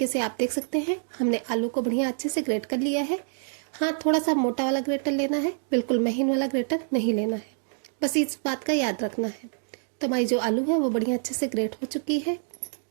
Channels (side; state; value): left; silent; digital silence